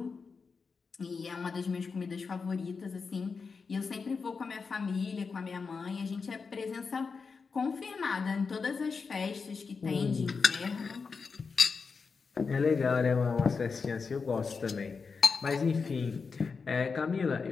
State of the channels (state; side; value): quieter; right; 5.0 dB